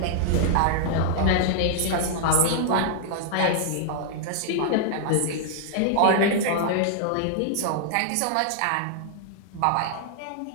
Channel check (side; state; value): both; different; correlation -0.01